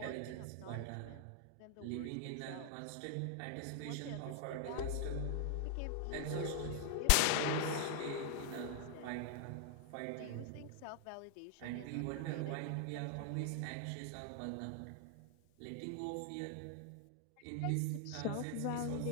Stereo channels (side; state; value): both; different; correlation 0.00